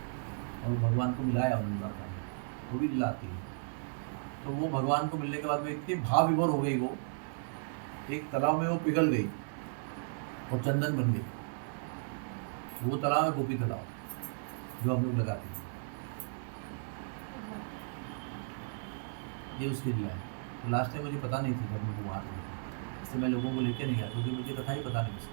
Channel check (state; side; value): silent; left; digital silence